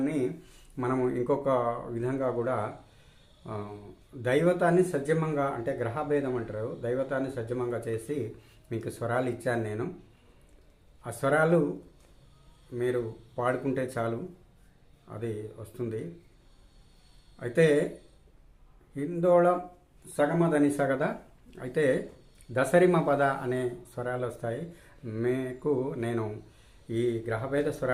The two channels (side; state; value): both; identical; correlation 1.00